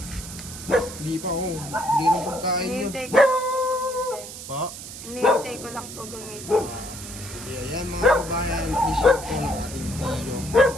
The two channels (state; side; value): noise; right; hiss, 12 dB below the sound